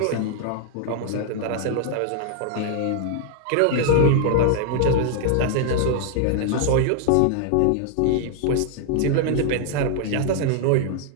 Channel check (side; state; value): both; different; correlation 0.00